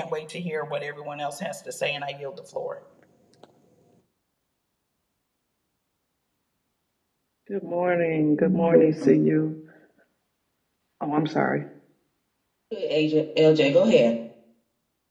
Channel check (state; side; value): identical; both; correlation 1.00